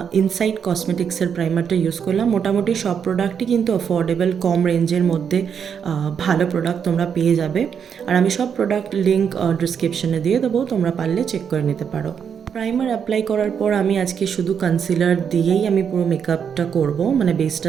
ইনসাইড কসমেটিক্সের প্রাইমারটা ইউজ করলাম। মোটামুটি সব প্রোডাক্টই কিন্তু অ্যাফোর্ডেবল, কম রেঞ্জের মধ্যে ভালো প্রোডাক্ট তোমরা পেয়ে যাবে। আর আমি সব প্রোডাক্ট লিঙ্ক ডিসক্রিপশনে দিয়ে দেবো, তোমরা পারলে চেক করে নিতে পারো। প্রাইমার অ্যাপ্লাই করার পর আমি আজকে শুধু কনসিলার দিয়েই আমি পুরো মেকআপটা করব, মানে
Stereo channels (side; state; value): left; quieter; 7.4 dB